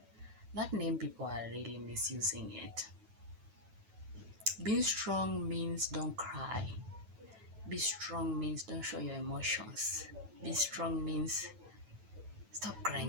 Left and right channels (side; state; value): left; late; 9.2 ms